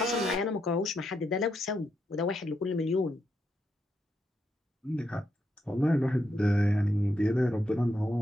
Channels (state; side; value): normal; both; correlation 0.81